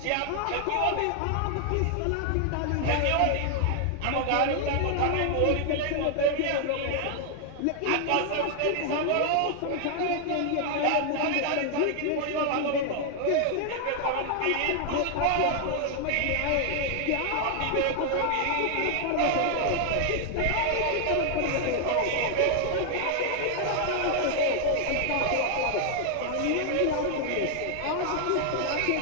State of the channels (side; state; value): both; different; correlation 0.00